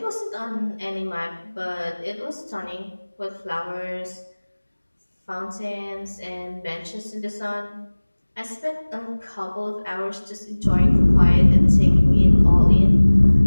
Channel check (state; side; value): inverted; both; correlation -1.00